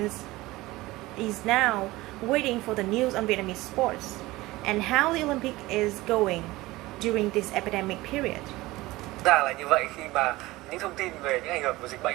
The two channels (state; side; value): quieter; left; 19.3 dB